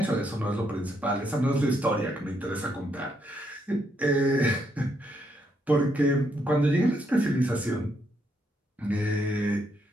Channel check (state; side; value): normal; both; correlation 0.76